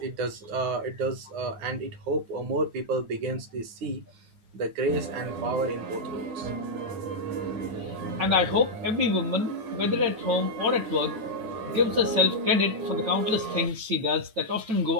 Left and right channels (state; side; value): late; left; 9.5 ms